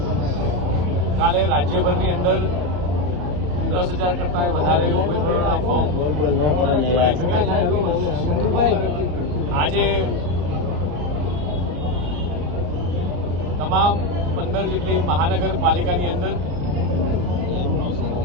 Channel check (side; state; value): left; late; 34 ms